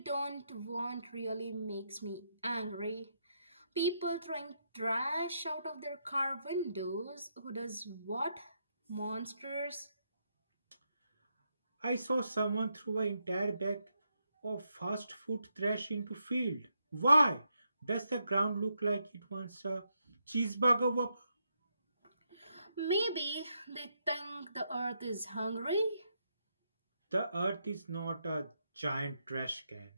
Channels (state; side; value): inverted; both; correlation -0.81